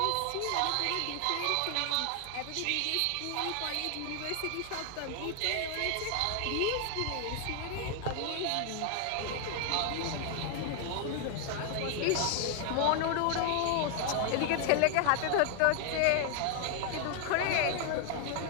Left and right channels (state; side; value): different; both; correlation 0.00